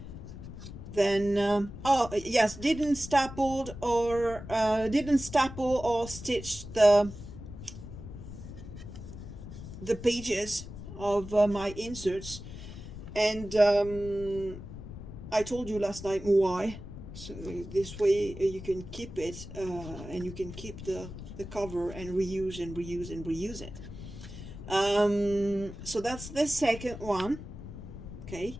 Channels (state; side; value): noise; left; rumble, 12 dB below the sound